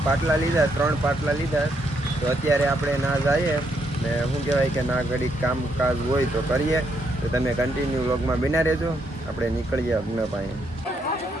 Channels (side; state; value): both; normal; correlation 0.76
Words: પાટલા લીધા, 3 પાટલા લીધા. તો અત્યારે આપણે ના જઈએ ને શું કહેવાય કે ના ઘડીક કામકાજ હોય તો કરીએ. તો તમે કન્ટિન્યુ વ્લોગમાં બના રહેજો. આપણે નીકળીએ યજ્ઞ પાસે.